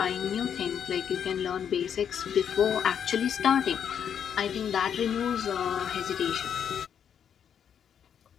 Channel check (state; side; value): quieter; right; 8.3 dB